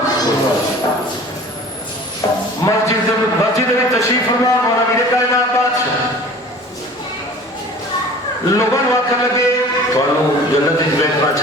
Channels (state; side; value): normal; both; correlation 0.44